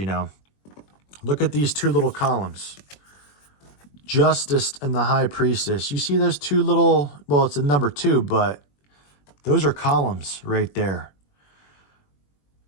Look at these two little columns. Justice and the High Priestess. You see those two little, well, it's a number 2, but those are columns right there.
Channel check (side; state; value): right; late; 21 ms